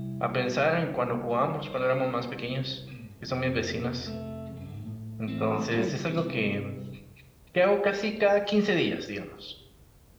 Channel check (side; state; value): both; identical; correlation 1.00